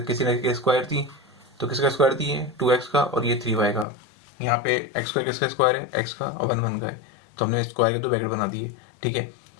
किसी स्क्वायर थी, तो किसका स्क्वायर थी, ये 2x का और ये 3y का। यहाँ पे x स्क्वायर किसका स्क्वायर है, x का, और 1 1 का है, तो हमने स्क्वायर के दो ब्रैकेट बना दिए, ठीक है।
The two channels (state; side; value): drops out; right; at 3.9 s